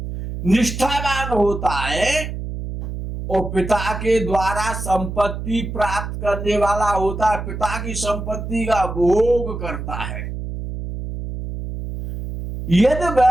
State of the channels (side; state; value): right; noise; hum, 6 dB below the sound